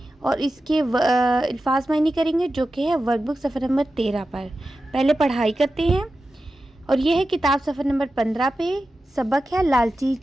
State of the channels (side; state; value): both; normal; correlation 0.93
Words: اور اس کے الفاظ معنی کریں گے، جو کہ ہے ورک بک صفحہ نمبر 13 پر۔ پہلے پڑھائی کرتے ہیں، اور یہ ہے کتاب صفحہ نمبر 15 پہ۔ سبق ہے لالچی